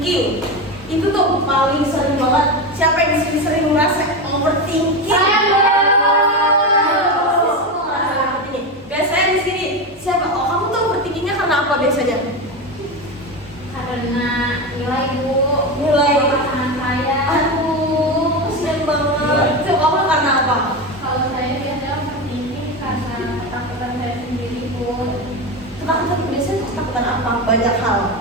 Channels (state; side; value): normal; both; correlation 0.18